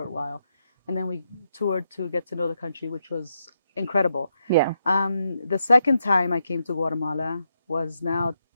while, and then we toured to get to know the country, which was incredible. Yeah. The second time I came to Guatemala was now,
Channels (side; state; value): both; inverted; correlation -0.81